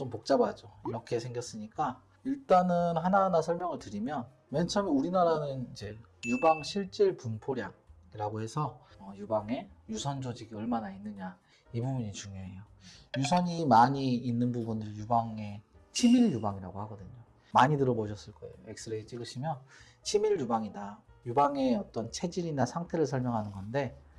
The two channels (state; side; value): identical; both; correlation 1.00